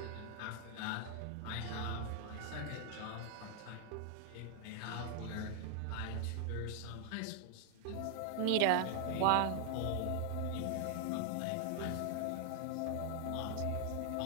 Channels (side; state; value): both; different; correlation 0.00